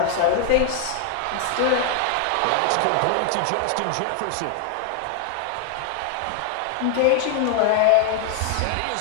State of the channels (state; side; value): different; both; correlation 0.00